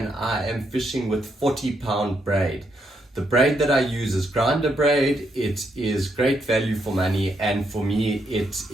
I am fishing with 40-pound braid. The braid that I use is grinder braid. It is great value for money, and for me it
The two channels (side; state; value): both; normal; correlation 0.78